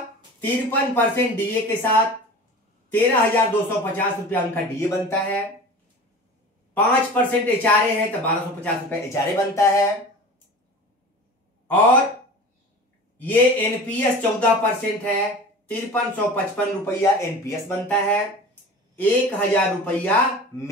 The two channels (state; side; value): normal; both; correlation 0.37